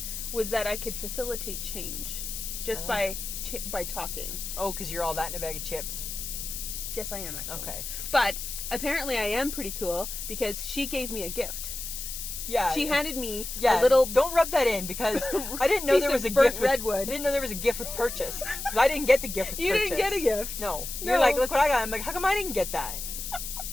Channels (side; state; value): left; noise; hiss, 6 dB below the sound